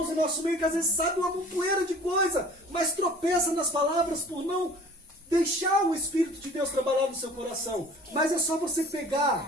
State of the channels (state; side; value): normal; both; correlation 0.47